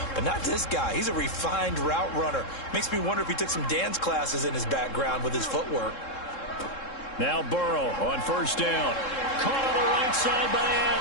But not this guy. He's a refined route runner. Makes me wonder if he took some dance classes in his background with his footwork. Now Burrow on 1st down. Caught on the right side by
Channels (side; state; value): right; late; 3.7 ms